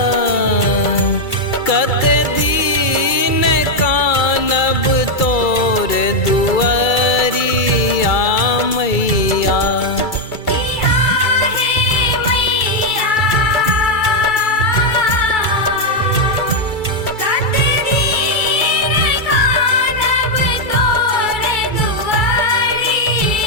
कते दिन कानब तोर दुआरिया मैया। किया है मैया कते दिन कानब तोर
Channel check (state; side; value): late; right; 2.3 ms